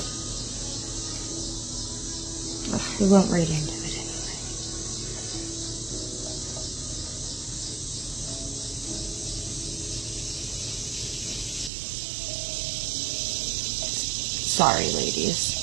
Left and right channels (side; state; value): left; drops out; at 11.7 s